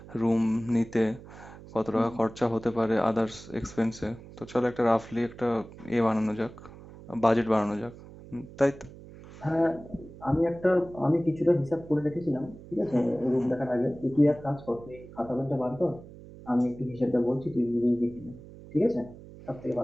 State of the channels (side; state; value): right; noise; hum, 17 dB below the sound